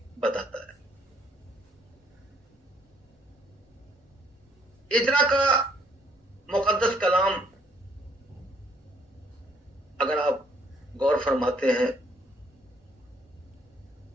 बताता है। एजरा का मुकद्दस कलाम अगर आप गौर फरमाते हैं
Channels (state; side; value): normal; both; correlation 0.66